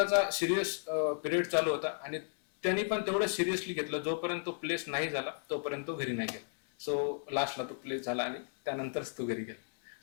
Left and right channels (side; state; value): right; silent; 55 dB below the other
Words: सिरियस पिरियड चालू होता आणि त्यांनी पण तेवढं सिरियसली घेतलं. जोपर्यंत तो प्लेस नाही झाला तोपर्यंत तो घरी नाही गेला. सो लास्टला तो प्लेस झाला आणि त्यानंतरच तो घरी गेला.